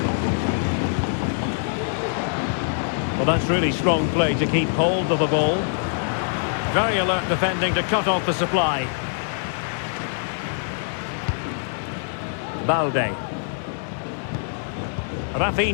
Well, that's really strong play to keep hold of the ball. Very alert defending to cut off the supply. Balde.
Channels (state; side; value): silent; right; digital silence